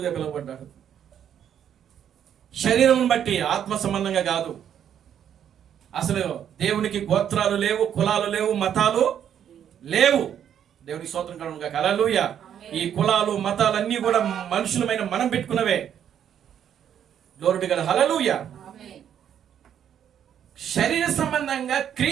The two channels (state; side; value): quieter; left; 9.3 dB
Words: పిలువబడ్డాడు. శరీరమును బట్టి, ఆత్మ సంబంధంగా కాదు. అసలు దేవునికి గోత్రాలు లేవు, కులాలు లేవు, మతాలు లేవు. దేవునికి స్తోత్రం కలుగును గాక. హల్లెలూయా. ఈ కులాలు మతాలన్నీ కూడా మనుషులమైన మనం పెట్టుకున్నవే. Glory to God. హల్లెలూయా. శరీర సంబంధంగా